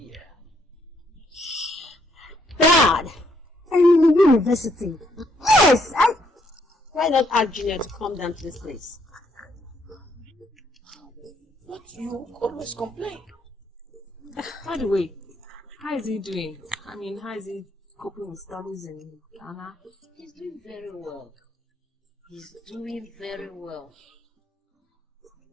Dad! I'm in the university. Yes! Why not ask Junior to come down to this place? But you always complain. By the way, how is he doing? I mean, how is he coping with studies in Ghana? He's doing very well. He's doing very well.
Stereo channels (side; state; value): both; normal; correlation 0.71